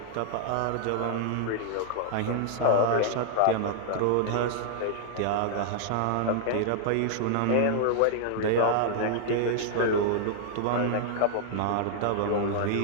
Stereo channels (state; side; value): different; both; correlation -0.01